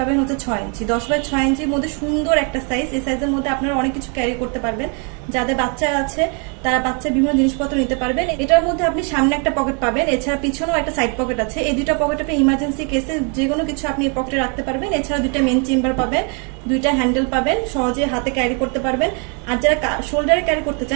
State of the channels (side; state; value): left; quieter; 36.9 dB